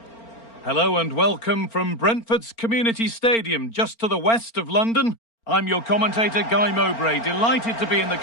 Hello and welcome from Brentford's Community Stadium, just to the west of London. I'm your commentator, Guy Mowbray, delighted to be in the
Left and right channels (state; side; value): late; right; 4.4 ms